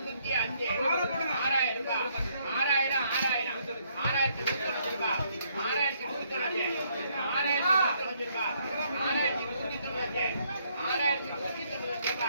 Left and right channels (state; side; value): inverted; both; correlation -0.70